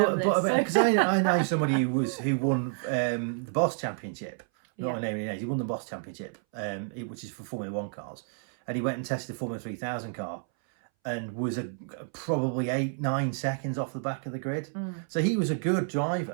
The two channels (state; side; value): silent; left; 58 dB below the other